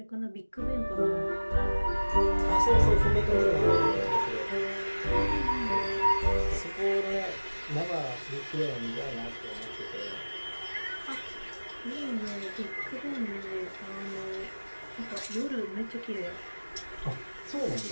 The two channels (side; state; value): both; inverted; correlation -1.00